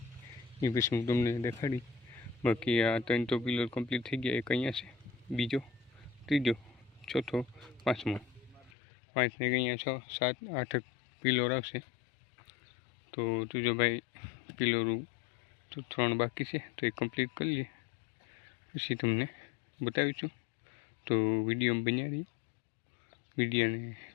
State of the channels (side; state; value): right; drops out; at 8.7 s